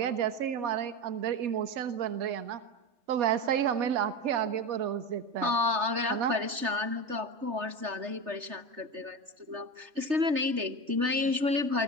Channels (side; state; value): left; late; 3.3 ms